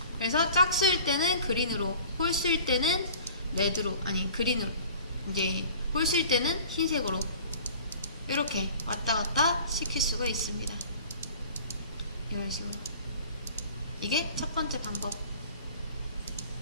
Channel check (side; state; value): both; inverted; correlation -0.46